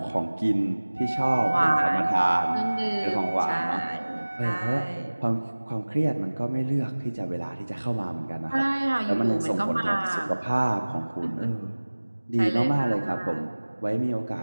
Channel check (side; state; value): both; inverted; correlation -1.00